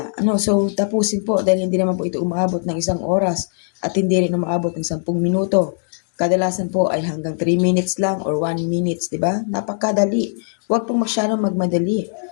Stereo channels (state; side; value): silent; right; digital silence